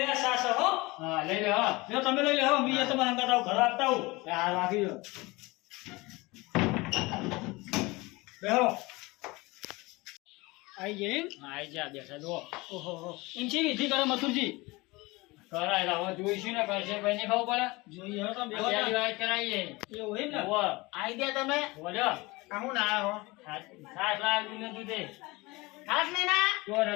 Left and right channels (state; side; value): quieter; right; 23.0 dB